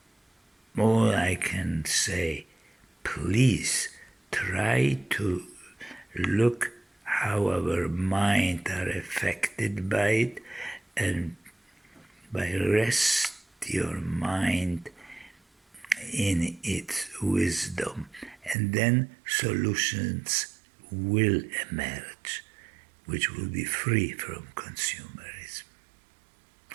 all I can say, please try to look how our mind are affected by it and by rest your mind in its wisdom, and then solutions will emerge, which will be free from consumerism.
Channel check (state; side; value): drops out; left; at 18.6 s